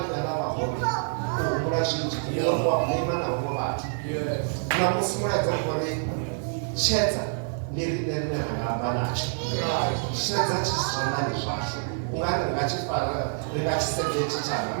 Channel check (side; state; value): left; silent; 60 dB below the other